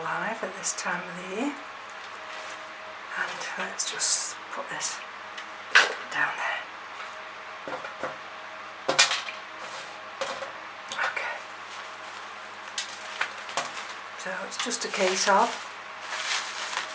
at this time of the year. And let's just put this down there. Okay. So it's just a case of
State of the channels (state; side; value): identical; both; correlation 1.00